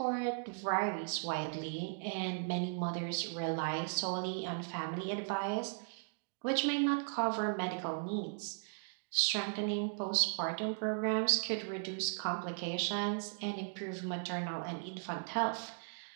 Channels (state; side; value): silent; left; digital silence